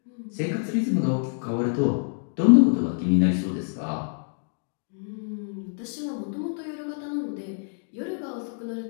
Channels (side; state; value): right; silent; digital silence